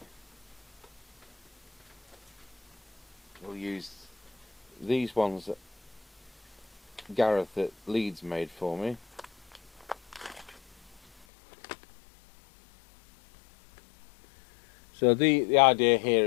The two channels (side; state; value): right; drops out; at 11.2 s